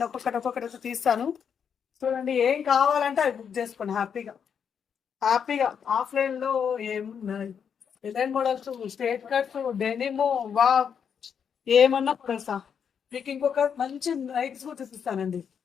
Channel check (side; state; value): right; quieter; 7.4 dB